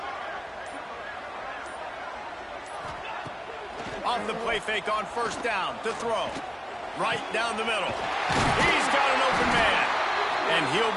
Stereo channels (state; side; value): identical; both; correlation 1.00